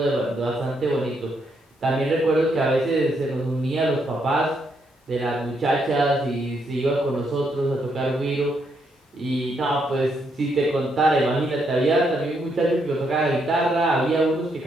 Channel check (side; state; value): both; normal; correlation 0.76